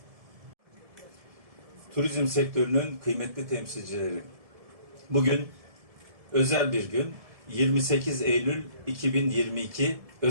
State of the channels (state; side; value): late; left; 1.7 ms